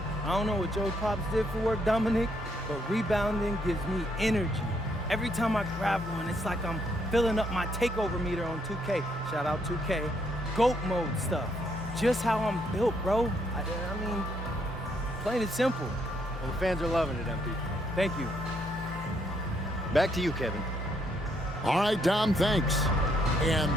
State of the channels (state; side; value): normal; both; correlation 0.73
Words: I don't know what Joe Pops did for work, Dominic, but rebounding gives me energy. Every time I grab one, it's like I'm filling up my takeover meter on 2K. Shout out 2K. GOAT mode stuff. Just how I'm built, bro. I mean, plain and simple. Well, the fans are loving it, MP. Thank you. Back to you, Kevin. All right, Dom, thanks. And